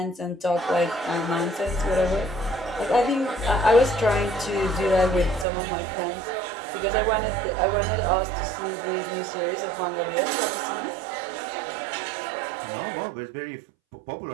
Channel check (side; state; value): left; drops out; at 5.5 s